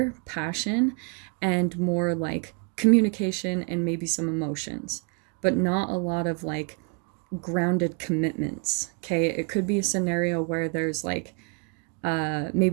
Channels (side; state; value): left; quieter; 35.0 dB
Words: passion, and more like communication and maybe some emotions, but not a lot of like grounded commitments, okay? It could be a scenario where there's like